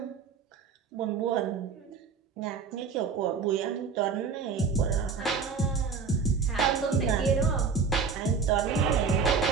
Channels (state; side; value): quieter; left; 5.5 dB